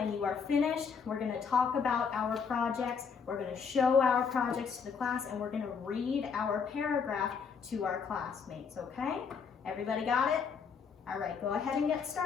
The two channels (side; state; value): right; quieter; 6.0 dB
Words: you are finished, we're going to talk about our projects, we're going to show our projects to the class, and we're going to read our paragraph to our classmates, okay? Everybody got it? All right, go ahead and get